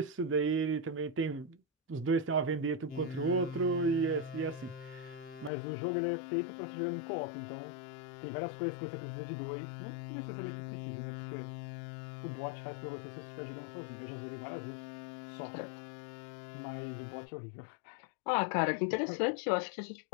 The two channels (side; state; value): right; drops out; at 5.5 s